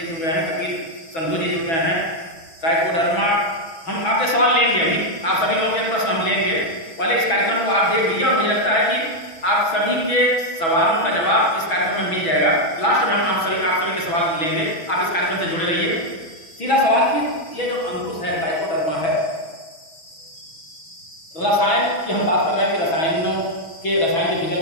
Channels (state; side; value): late; right; 6.1 ms